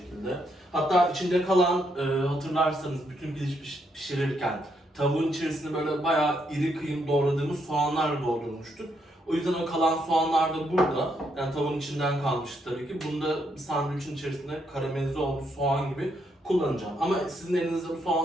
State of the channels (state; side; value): normal; both; correlation 0.76